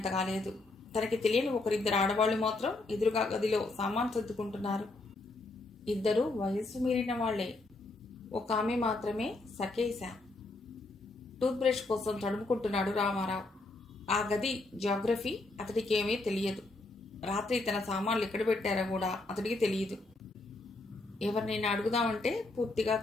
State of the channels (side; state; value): right; quieter; 3.1 dB